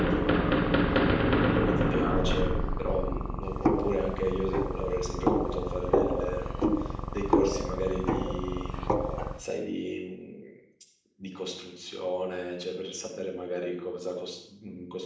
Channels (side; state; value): both; identical; correlation 1.00